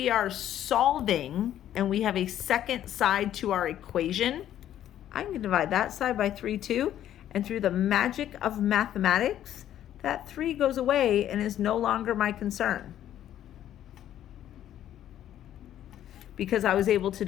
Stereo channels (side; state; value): right; quieter; 11.5 dB